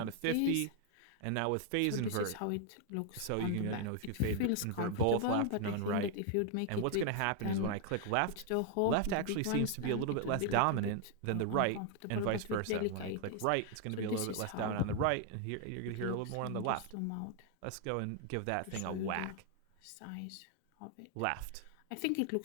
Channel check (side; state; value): both; different; correlation 0.00